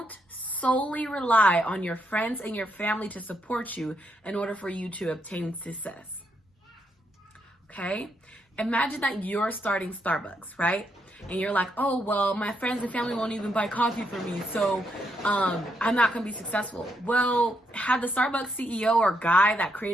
solely rely on your friends and your family to support you in order for you to obtain success. Okay? Imagine that you're starting Starbucks, right? And you're like, oh, well, my friends and family won't even buy coffee for me, so I'm not going to be successful. Well, had the Starbucks CEO or guy that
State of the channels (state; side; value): normal; both; correlation 0.78